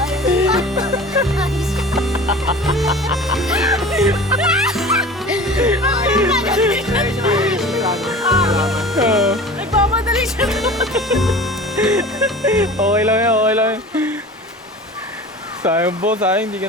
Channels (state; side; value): normal; both; correlation 0.39